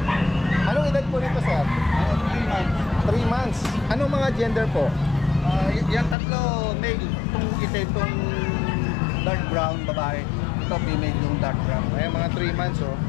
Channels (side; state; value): right; drops out; at 6.2 s